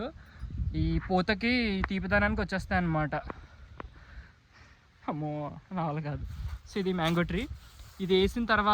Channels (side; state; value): both; identical; correlation 1.00